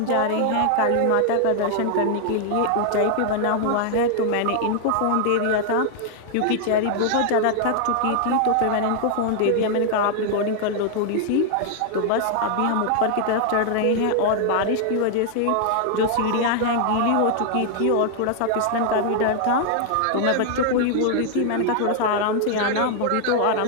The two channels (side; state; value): both; different; correlation 0.00